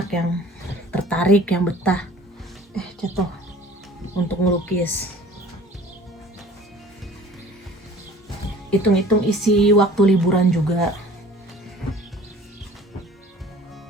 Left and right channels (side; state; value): both; normal; correlation 0.48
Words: yang tertarik, yang betah jatuh untuk melukis. Hitung-hitung isi waktu liburan juga.